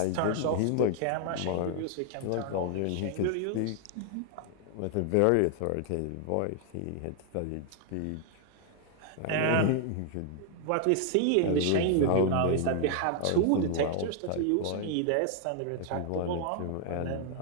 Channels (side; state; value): both; different; correlation 0.00